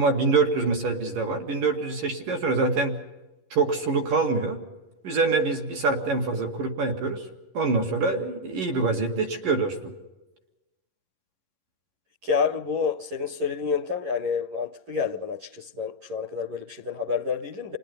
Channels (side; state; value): left; late; 11 ms